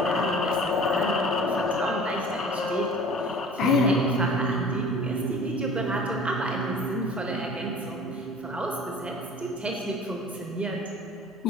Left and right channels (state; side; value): normal; both; correlation 0.44